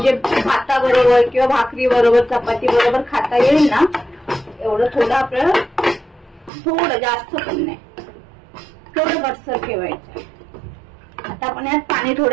भाताबरोबर किंवा भाकरी बरोबर, चपाती बरोबर खाता येईल ना एवढं थोडं आपल्याला, थोडं जास्त पण नाही, थोडं घट्टसर ठेवायचं. आता आपण यात पाणी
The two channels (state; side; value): drops out; left; at 6.5 s